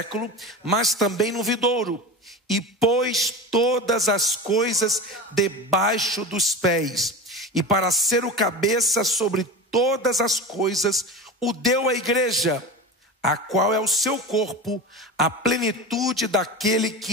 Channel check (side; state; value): both; normal; correlation 0.28